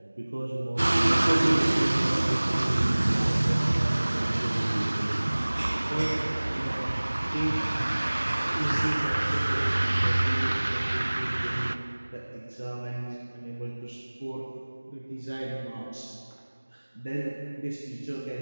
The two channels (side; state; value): both; inverted; correlation -1.00